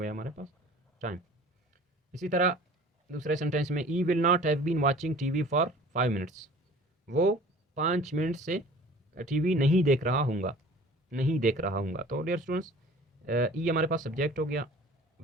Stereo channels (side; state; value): both; normal; correlation 0.46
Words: हमारे पास टाइम। इसी तरह दूसरे सेंटेंस में I will not have been watching TV for 5 minutes, वो 5 मिनट से टीवी नहीं देख रहा हूँगा, नहीं देख रहा हूँगा। तो डियर स्टूडेंट्स, ई हमारे पास सब्जेक्ट हो गया,